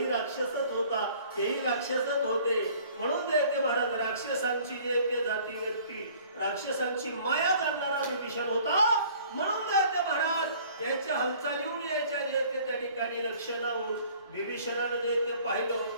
राक्षसच होता तेही राक्षसच होते. म्हणून ते महाराज राक्षसांची जे ते जाती व्यक्ती राक्षसांची माया जाणणारा विभीषण होता. म्हणून ते महाराज याच्या हालचालीहून यायच्या जे ते त्या ठिकाणी लक्षणाहून विभीषणानं जे ते पाहिलं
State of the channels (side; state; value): both; inverted; correlation -0.53